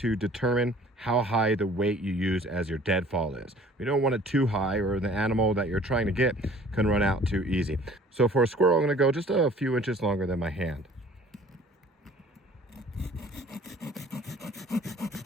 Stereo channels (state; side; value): normal; both; correlation 0.52